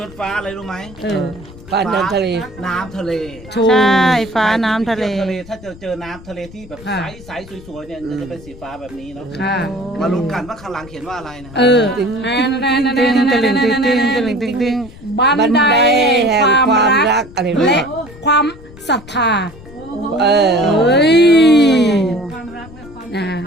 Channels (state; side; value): noise; left; rumble, 19 dB below the sound